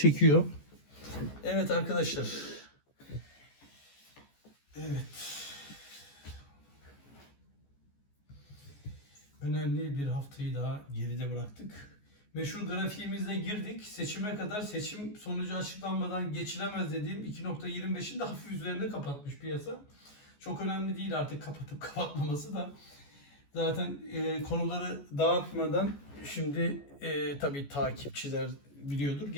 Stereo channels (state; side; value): late; right; 14 ms